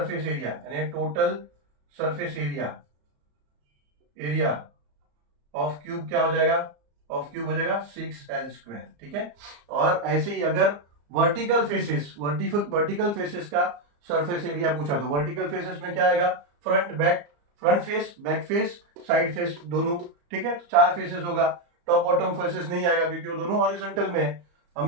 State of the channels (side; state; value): left; late; 34 ms